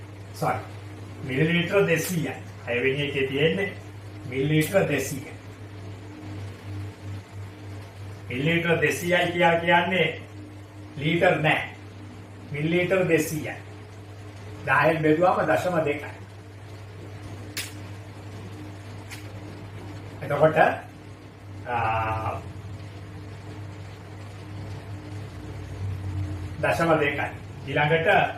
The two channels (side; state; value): both; identical; correlation 1.00